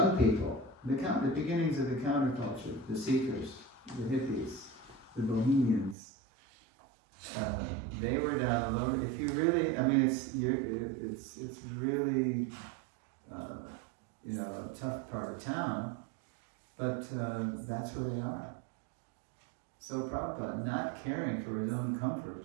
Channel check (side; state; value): left; drops out; at 6.0 s